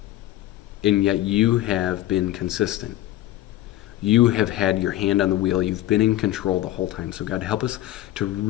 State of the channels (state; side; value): quieter; right; 14.4 dB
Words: And yet you have been consistent. You have had your hand on the wheel. You've been in control the whole time. So God, help us to